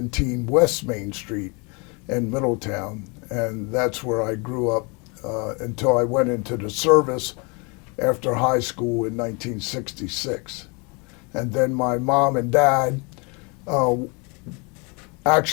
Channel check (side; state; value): right; quieter; 31.0 dB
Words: West Main Street in Middletown. And that's where I grew up until I went into the service after high school in 1966. And then my mom and dad